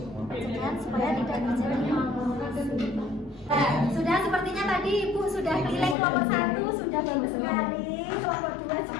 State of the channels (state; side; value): drops out; right; at 6.0 s